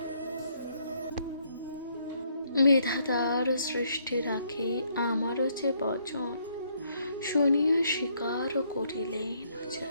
বিধাতার সৃষ্টি রাখি আমারও যে বচন। শুনিয়া স্বীকার করিলেন যে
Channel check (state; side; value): inverted; both; correlation -0.70